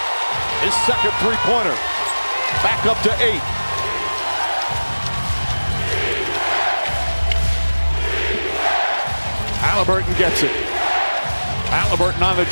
His second three-pointer. Back up to 8. Halliburton gets it. Halliburton on the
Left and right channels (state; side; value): inverted; both; correlation -1.00